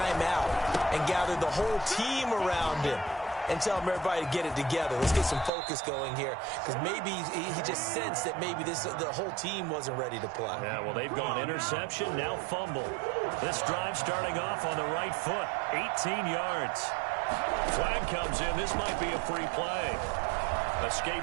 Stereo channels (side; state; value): left; drops out; at 5.5 s